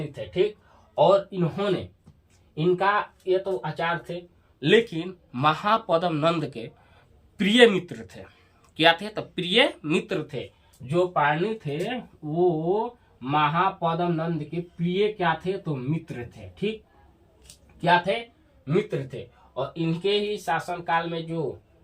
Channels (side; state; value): both; identical; correlation 1.00